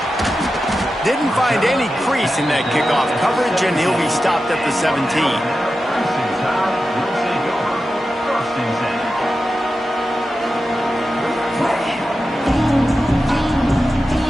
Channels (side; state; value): both; normal; correlation 0.92